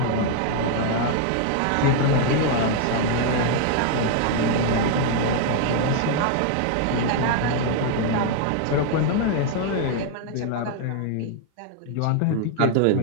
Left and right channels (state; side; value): different; both; correlation 0.00